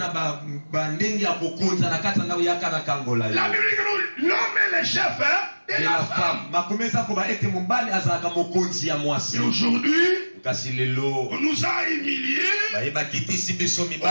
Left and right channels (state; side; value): inverted; both; correlation -1.00